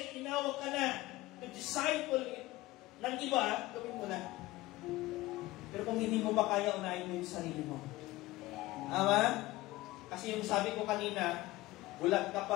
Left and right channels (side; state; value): right; quieter; 18.6 dB